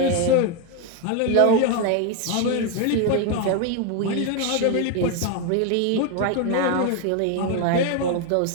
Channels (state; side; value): different; both; correlation 0.01